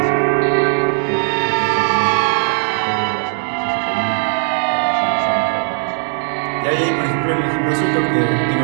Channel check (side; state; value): left; silent; digital silence